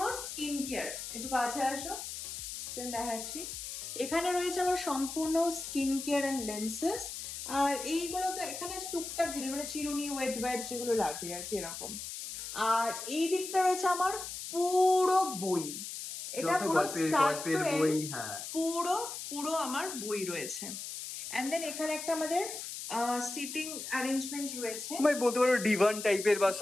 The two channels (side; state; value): left; noise; hiss, 7 dB below the sound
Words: স্কিন কেয়ার। একটু কাছে আসো, দেন দেখাচ্ছি। এখানে রয়েছে আমার সম্পূর্ণ স্কিন কেয়ার এন্ড লেন্সেস। আর এইগুলো এখানে টুকটাক জিনিস, মানে চিরুনি, ওয়েট ওয়াইপস যেগুলো লাগে আর কি, এরকম। আর এই দিকটা রয়েছে আমার পুরো বই। এটা পুরো স্টার্ট টু এন্ড পুরো আমার বই রয়েছে। এন্ড দেন এখানে একটা আমাদের সিটিং অ্যারেঞ্জমেন্ট রয়েছে, মানে বলতে পারো ডিভান টাইপের বা